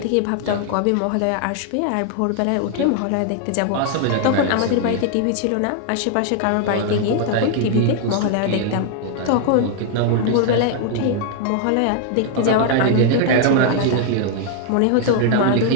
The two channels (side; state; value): both; different; correlation 0.00